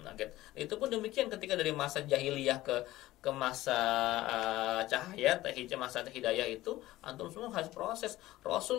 Itu pun demikian ketika dari masa jahiliyah ke masa cahaya, masa hidayah itu antum semua harus proses.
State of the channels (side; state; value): right; quieter; 16.6 dB